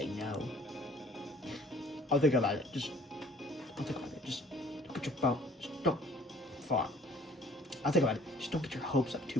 no. I'll think about it. Just look at your phone. Just don't far. I'll think about it. Just don't get your hopes up too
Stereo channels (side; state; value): both; normal; correlation 0.55